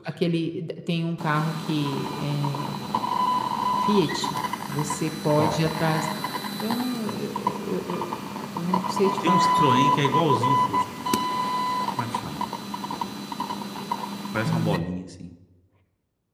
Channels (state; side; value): identical; both; correlation 1.00